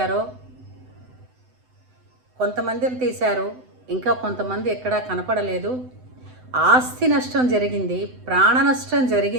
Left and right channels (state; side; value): late; left; 7.9 ms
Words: కొంతమందిని తీశారు, ఇంకా కొంతమంది ఎక్కడా కనపడలేదు. ఆస్తి నష్టం జరిగింది, ప్రాణ నష్టం